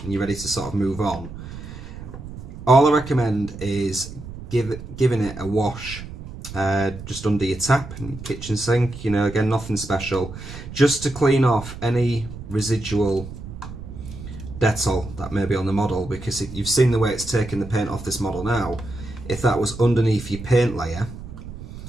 and you're ready to sort of move on, all I recommend is giving it a wash just under your tap in your kitchen sink. You know, again, nothing special, just to clean off any residual Dettol that may be on the model, because you've seen the way it's taken the paint off this model now. If that was underneath your paint layer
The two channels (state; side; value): noise; right; rumble, 12 dB below the sound